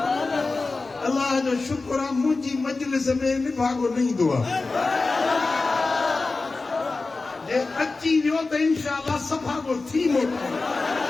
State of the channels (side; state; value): right; quieter; 3.7 dB